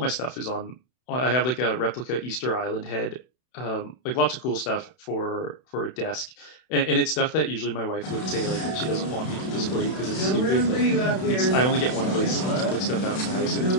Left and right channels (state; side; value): late; right; 31 ms